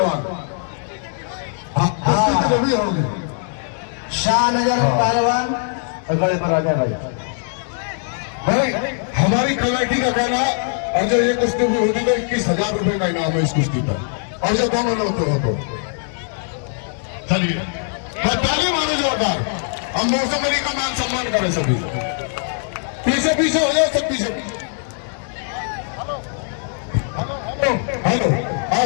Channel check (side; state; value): right; silent; 65 dB below the other